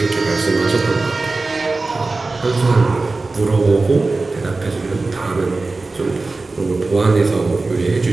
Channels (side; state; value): left; quieter; 3.5 dB